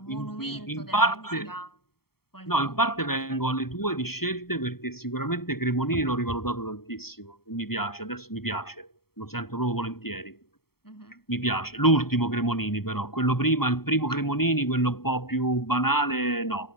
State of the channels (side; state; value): right; late; 0.95 ms